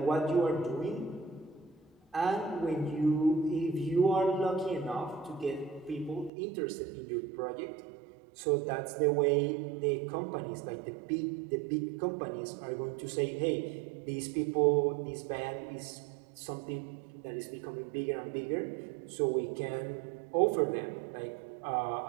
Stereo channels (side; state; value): left; drops out; at 6.3 s